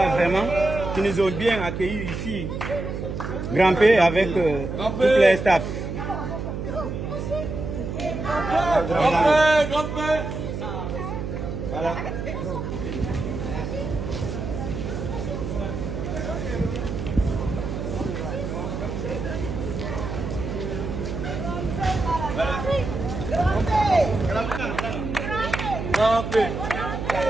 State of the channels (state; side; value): noise; right; hum, 5 dB below the sound